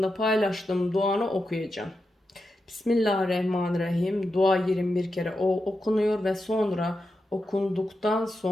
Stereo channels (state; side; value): normal; both; correlation 0.88